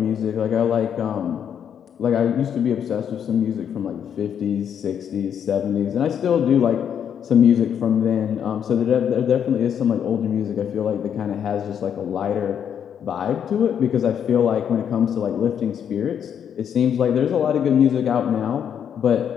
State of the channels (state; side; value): quieter; right; 8.5 dB